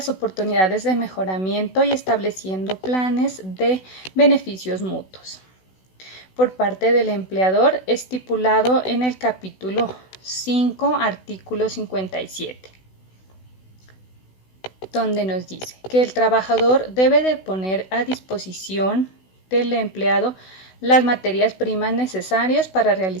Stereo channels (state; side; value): late; right; 16 ms